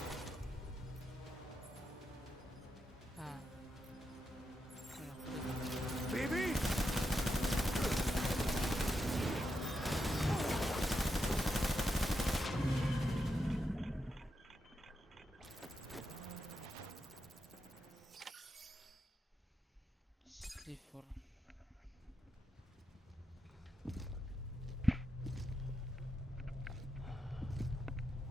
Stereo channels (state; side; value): normal; both; correlation 0.85